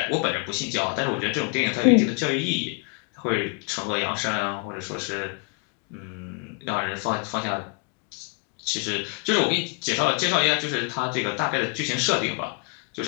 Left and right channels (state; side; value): quieter; right; 33.8 dB